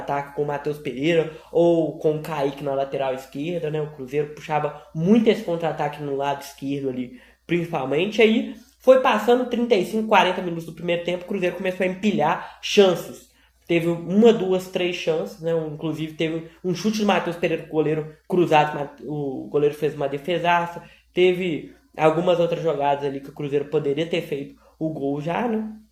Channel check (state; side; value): identical; both; correlation 1.00